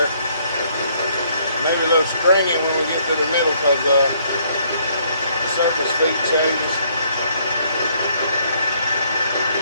Maybe a little stringing when we get to the middle because the surface feet changes.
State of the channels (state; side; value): inverted; both; correlation -0.66